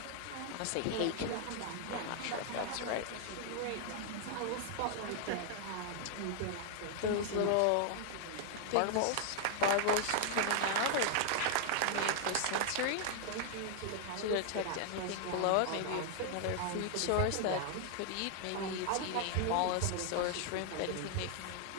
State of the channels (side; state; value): both; different; correlation 0.00